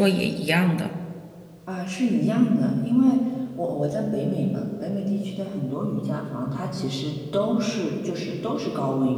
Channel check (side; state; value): both; identical; correlation 1.00